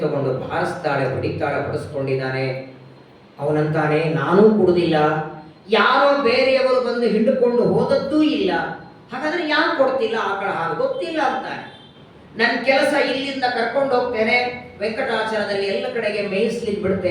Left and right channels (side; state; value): both; identical; correlation 1.00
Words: ತಗೊಂಡು ಬಾರಿಸ್ತಾಳೆ, ಹೊಡಿತಾಳೆ, ಹೊಡೆಸ್ಕೊಂಡಿದ್ದಾನೆ. ಅವನಂತಾನೆ, ನಾನೂ ಕುಡುದಿಲ್ಲ, ಯಾರೋ ಬೇರೆಯವರು ಬಂದು ಹಿಂಡುಕೊಂಡು ಹೋದದ್ದೂ ಇಲ್ಲ, ಹಾಗಾದ್ರೆ ಯಾರು ಕೊಡ್ತಿಲ್ಲ ಆಕಳ ಹಾಲು? ಗೊತ್ತಿಲ್ಲ ಅಂತಾನೆ. ನನ್ನ ಕೆಲಸ ಇಲ್ಲಿಂದ ಕರ್ಕೊಂಡು ಹೋಗ್ತೇನೆ, ವೆಂಕಟಾಚಲದಲ್ಲಿ ಎಲ್ಲ ಕಡೆಗೆ ಮೇಯಿಸ್ಲಿಕ್ಕೆ